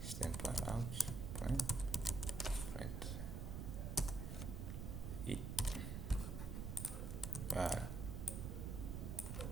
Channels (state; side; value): noise; right; rumble, 4 dB below the sound